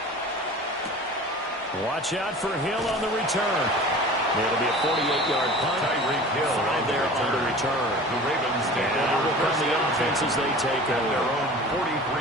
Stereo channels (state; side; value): normal; both; correlation 0.40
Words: Watch out for Hill on the return. It'll be a 48-yard punt. Tyreek Hill 5 there on the return. The Ravens take And over will come the offense as they take at their over. own